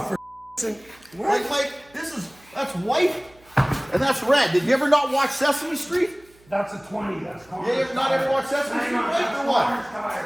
what? Mike, that's white and that's red. Did you ever not watch Sesame Street? That's a 20. That's Connor's You ever not ever watched Sesame Street, Mike, or what?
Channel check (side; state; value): right; noise; hum, 29 dB below the sound